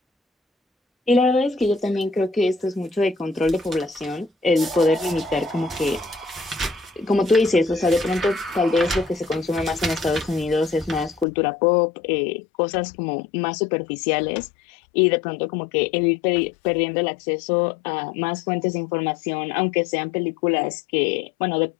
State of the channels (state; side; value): drops out; right; at 11.2 s